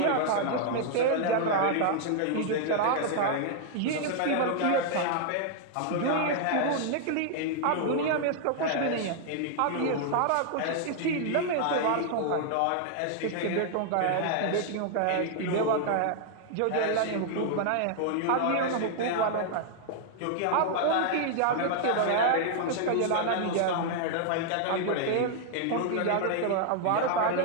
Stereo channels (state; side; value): different; both; correlation -0.01